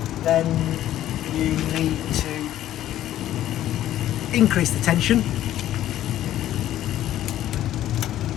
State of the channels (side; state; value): right; quieter; 12.7 dB